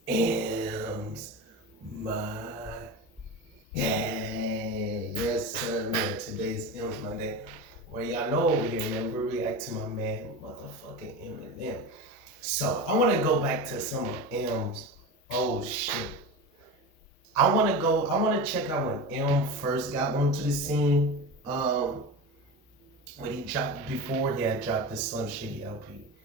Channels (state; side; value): normal; both; correlation 0.26